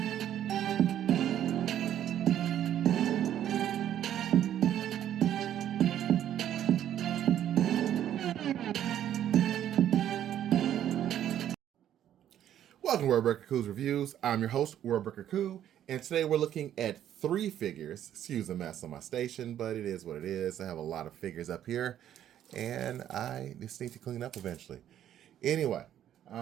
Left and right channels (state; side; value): quieter; left; 10.9 dB